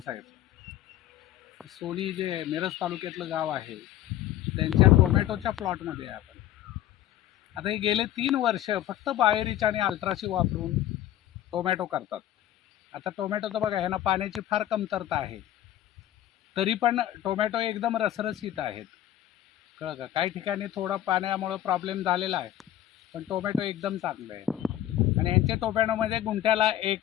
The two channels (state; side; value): quieter; right; 12.7 dB